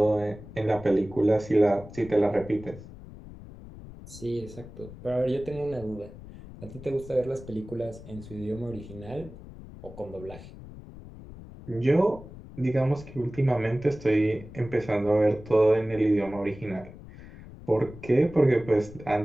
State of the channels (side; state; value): left; noise; rumble, 16 dB below the sound